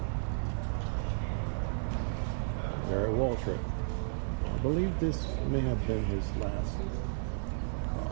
Gary Waltrip. I believe this may have been his last car.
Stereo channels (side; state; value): left; silent; digital silence